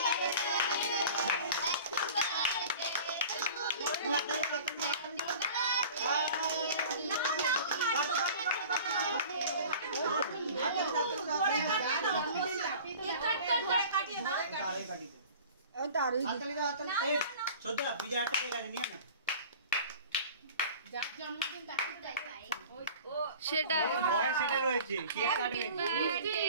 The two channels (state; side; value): inverted; both; correlation -0.42